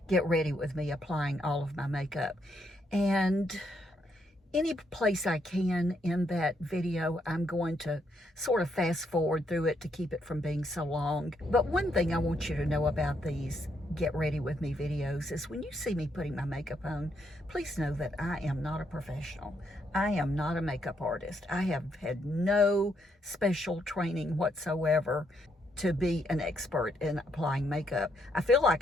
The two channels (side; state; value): both; normal; correlation 0.76